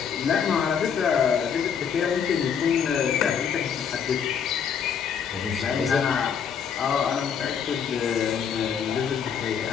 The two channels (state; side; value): quieter; right; 7.4 dB